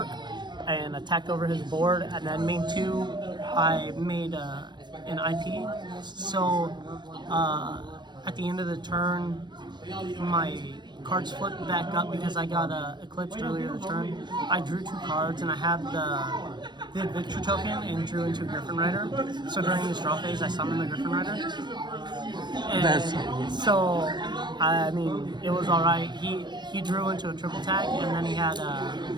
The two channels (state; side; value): late; left; 0.22 ms